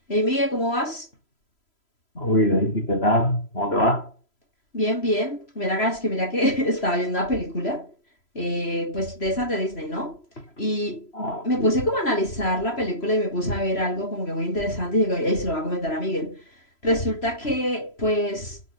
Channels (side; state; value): right; late; 3.0 ms